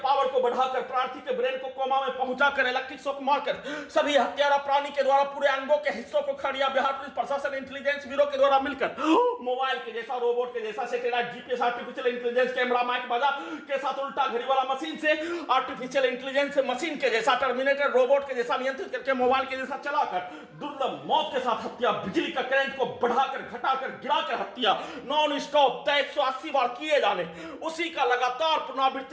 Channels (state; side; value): identical; both; correlation 1.00